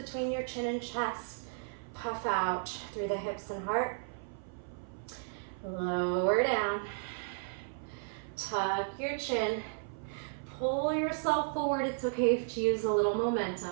your chin and chest. Puff out through the hips and heart. Lower down. Tuck your chin. Pull yourself forward. It's okay to use a little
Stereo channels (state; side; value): silent; left; 55 dB below the other